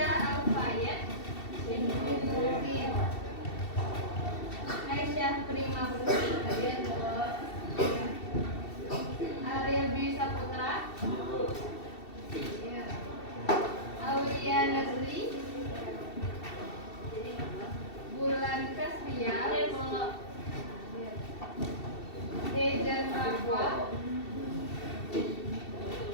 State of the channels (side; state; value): right; late; 2.7 ms